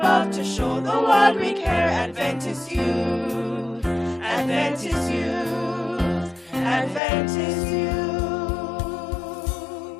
to show the world we care. Adventist youth, Adventist youth, Adventist youth.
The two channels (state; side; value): drops out; right; at 7.0 s